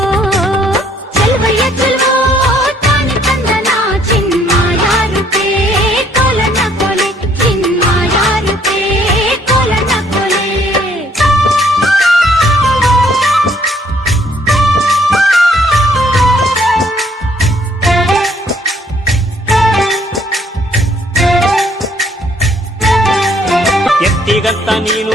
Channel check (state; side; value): normal; both; correlation 0.65